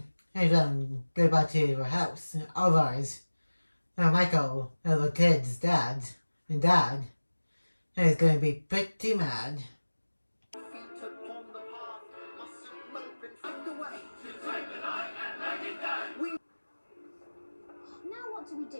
and go back to her house. Otherwise, Michael, the kid's dad, is going to be pretty mad. Feet upon the path, mustn't mope and find the way.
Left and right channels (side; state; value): both; inverted; correlation -1.00